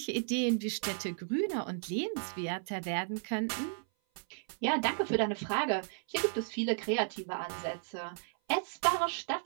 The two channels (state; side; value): silent; left; 55 dB below the other